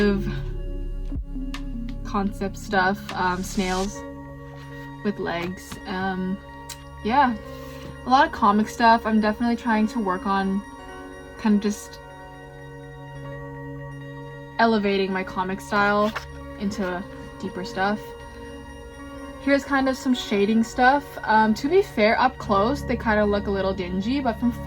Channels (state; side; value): identical; both; correlation 1.00